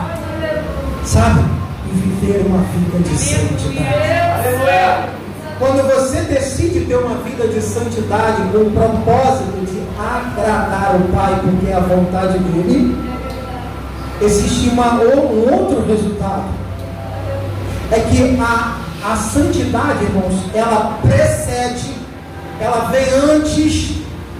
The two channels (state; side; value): identical; both; correlation 1.00